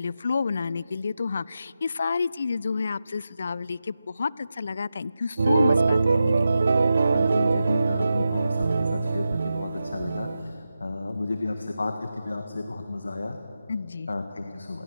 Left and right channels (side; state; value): both; inverted; correlation -0.90